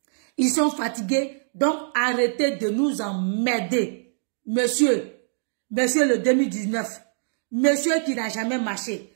Ils sont fatigués. Donc, arrêtez de nous emmerder. Monsieur le 2019. Monsieur qui n'a jamais marché.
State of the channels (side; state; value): left; silent; digital silence